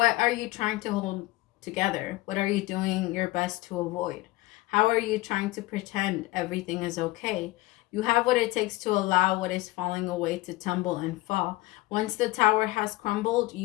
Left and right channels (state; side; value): quieter; right; 19.5 dB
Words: are you trying to hold together? What are you doing your best to avoid? How are you trying to pretend everything is okay? You have what it takes to allow what is falling away to tumble and fall. Once the tower has crumbled,